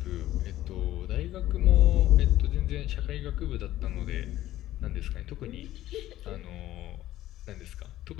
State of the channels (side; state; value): right; quieter; 14.4 dB